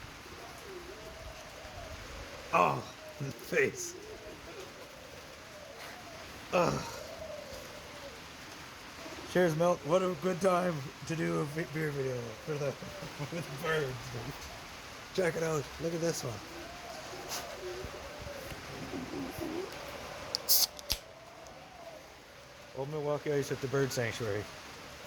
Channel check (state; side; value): identical; both; correlation 1.00